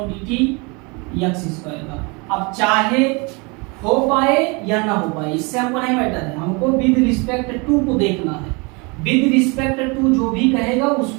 d t x square का। अब चाहे हो पाए या ना हो पाए इससे हमको नहीं मैटर है, हमको विद रिस्पेक्ट टू को देखना है। विद रिस्पेक्ट टू जो भी कहेगा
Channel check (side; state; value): left; quieter; 29.3 dB